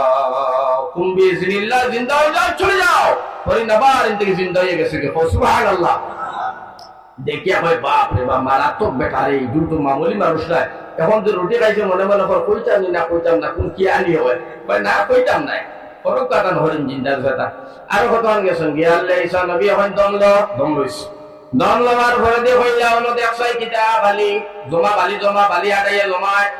কুম্বি জিনিল্লাহ জিন্দা হয়ে যাও চলে যাও হরিণ আবার থেকে জিন্দা হয়ে গেছে সুবহানাল্লাহ দেখিয়া হয় বাপ রে বাপ মারাত্মক বেটা রে দুটো মামুলি মানুষ নাই এখন যে রুটি খাইছে মনে মনে কইতাম না কোন কি আনি হয় না কইতাম নাই ফরক কাটান হরিণ জিন্দার কথা আরো কতক্ষণ গেছেন গিয়ালে ঈসা নবী এখন দম লইছে দম লওয়ার পরে দিয়ে হইলা হলো দেখছাই কিতা জমা বালি আড়াইয়া জমায়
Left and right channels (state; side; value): identical; both; correlation 1.00